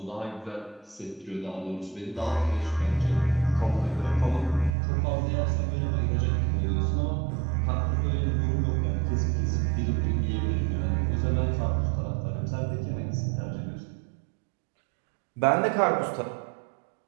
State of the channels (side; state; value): left; drops out; at 4.8 s